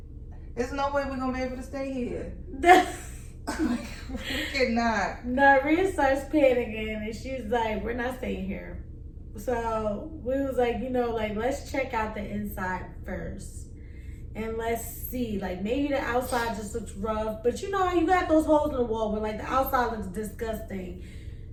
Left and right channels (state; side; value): identical; both; correlation 1.00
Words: There's no way we're gonna be able to stay here. We cannot. Now Rhea starts panicking and she's like, we're not staying here. So we was like, let's check out the inside first. and let's see. Like maybe the outside just looks rough, but you know how you got those holes in the wall where like the outside looks disgusting,